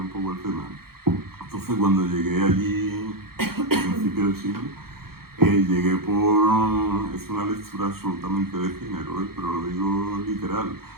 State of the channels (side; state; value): left; late; 0.94 ms